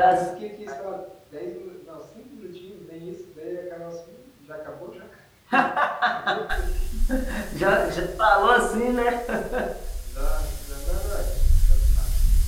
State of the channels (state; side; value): identical; both; correlation 1.00